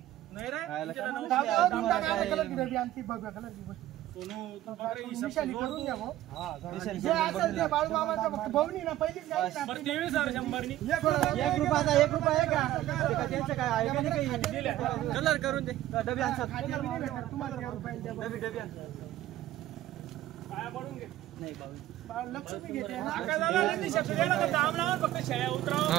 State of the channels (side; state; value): left; quieter; 14.2 dB